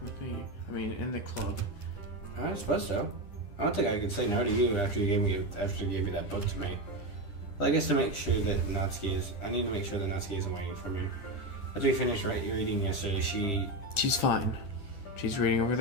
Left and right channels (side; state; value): right; late; 10 ms